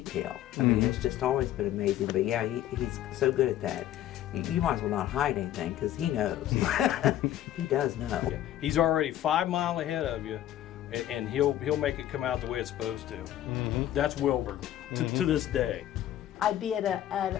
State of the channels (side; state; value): right; quieter; 12.4 dB